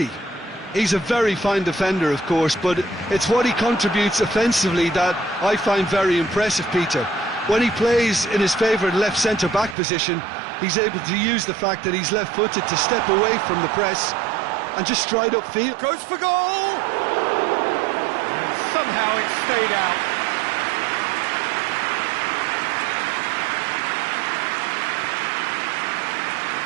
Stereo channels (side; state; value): left; drops out; at 9.8 s